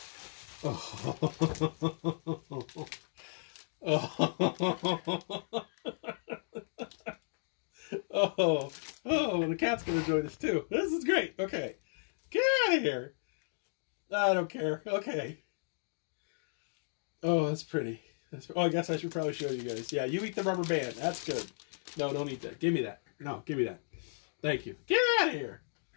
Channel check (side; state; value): right; silent; digital silence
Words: Oh, the cat's gonna join us too. This is great. Okay, get out of here. I don't care. Okay. Oh, that's pretty. Oh, I guess I should probably show you guys. Yeah, you eat the rubber band. That's good. No, don't eat that. Give me that. No, give me that. Thank you. Get out of here.